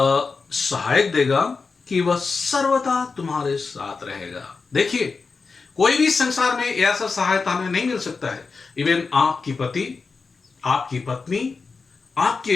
सहायक देगा कि वह सर्वदा तुम्हारे साथ रहेगा। देखिए, कोई भी संसार में ऐसा सहायता हमें नहीं मिल सकता है। इवन आपकी पति, आपकी पत्नी,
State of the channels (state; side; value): quieter; right; 4.6 dB